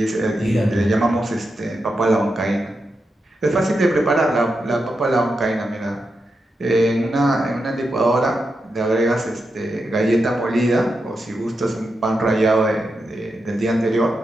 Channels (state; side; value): normal; both; correlation 0.87